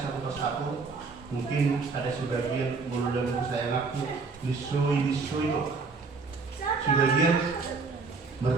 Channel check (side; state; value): left; quieter; 4.4 dB